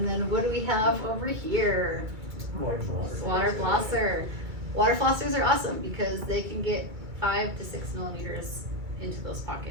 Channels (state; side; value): late; left; 2.3 ms